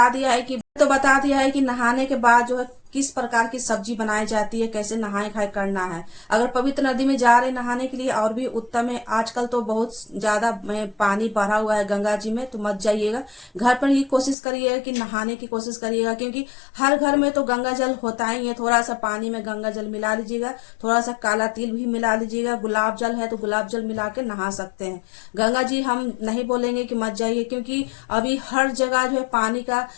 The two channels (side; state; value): right; drops out; at 14.4 s